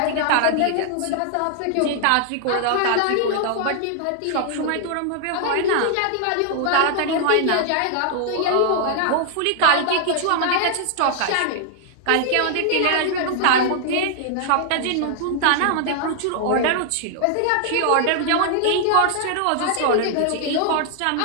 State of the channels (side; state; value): both; different; correlation 0.00